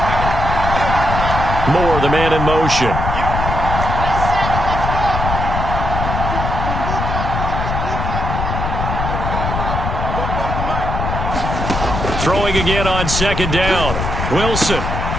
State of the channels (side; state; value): left; noise; rumble, 2 dB below the sound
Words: Moore, the man in motion. Throwing again on 2nd down. Wilson.